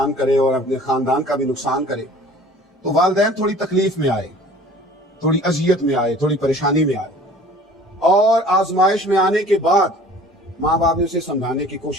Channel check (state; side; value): normal; both; correlation 0.48